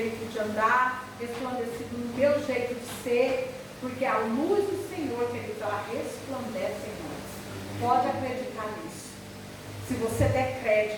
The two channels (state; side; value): identical; both; correlation 1.00